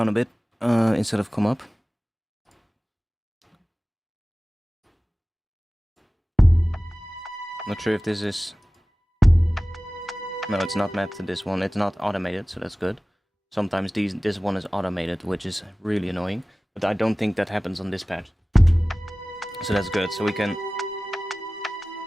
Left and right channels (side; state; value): both; normal; correlation 0.97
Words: a bit instead of come up. Not sure if this is... No, it's not mapped to this one. It's not automated, so that's good. Sometimes this one is automated, which is really annoying. But I don't think that happens on this patch. So that's good. So we can...